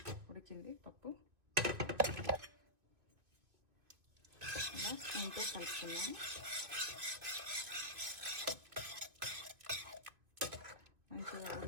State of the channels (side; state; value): left; late; 2.7 ms